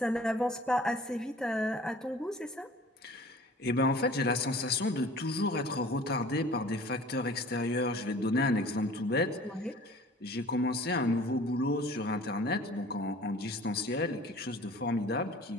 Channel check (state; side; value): normal; both; correlation 0.46